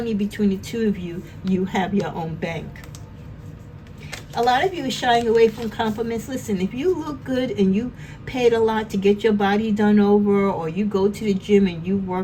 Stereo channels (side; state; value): both; identical; correlation 1.00